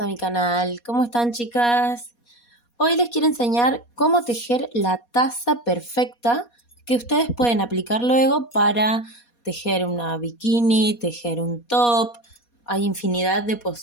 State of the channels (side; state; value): right; late; 4.2 ms